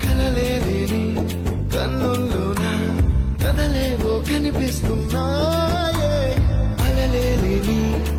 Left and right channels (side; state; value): both; identical; correlation 1.00